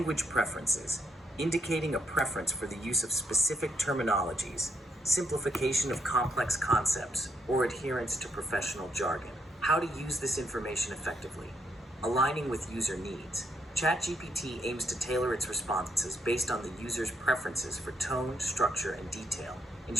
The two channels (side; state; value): both; normal; correlation 0.76